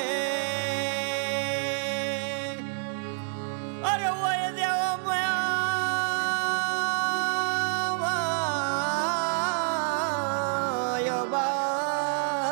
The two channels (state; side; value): silent; left; 59 dB below the other